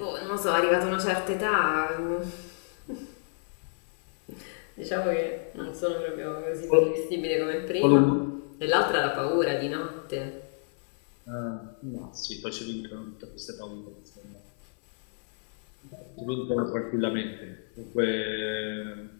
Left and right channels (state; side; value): silent; right; 57 dB below the other